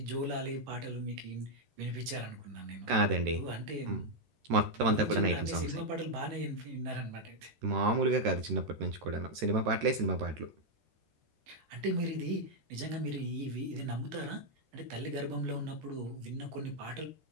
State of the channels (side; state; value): left; late; 13 ms